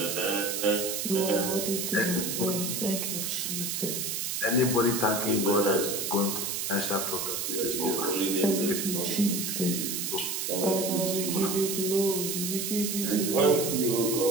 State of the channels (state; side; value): noise; right; hiss, 2 dB below the sound